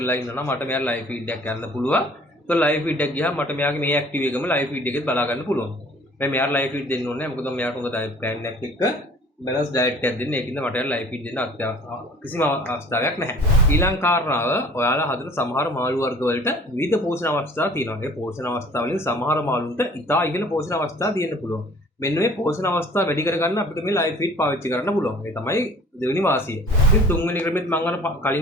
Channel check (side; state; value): both; normal; correlation 0.51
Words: ඉන්නවා නම් මට මෙයා ලයිව් ෆීඩ් එකක් ගන්න පුළුවන්. ඒක ලයිව් ෆීඩ් එකක් ගියාම මට මෙයාගේ මේ ඇක්ටිව් එකම ලයිව් ෆීඩ් එකෙත් බලා ගන්න පුළුවන්. මම මෙයාට ලයිව් ෆීඩ් දෙන්න ඕනේ නැහැ. මොකද මෙයාට හොඳ ඩයට් ප්ලෑන් එකක් එක්ක බැලන්ස් ඩයට් එකක් දෙන්න. ඒකින්ද මට ලයිව් ෆීඩ් දෙන්න කිසිම අවස්ථාවක් නැහැ. ඊළඟ කාරණාව ඔයාලා හදන සමහර මාළු වර්ග වලට විවිධ පෝෂණ අවස්ථා තියෙනවා. ඒ පෝෂණ අවස්ථා වලින් සමහර මාළුන්ට ඉතා ඉහළ පෝෂණ අවස්ථා තියෙන්න පුළුවන්. මෙන්න මේ පෝෂණ අවස්ථා වැඩි කරගන්න අපිට මේ ලයිව් ෆීඩ් පාවිච්චි කරන්න පුළුවන්. ඒ තමයි දෙවෙනි වාසිය. ඉතින් තුන්වෙනි ක්‍රමෙත් මම අර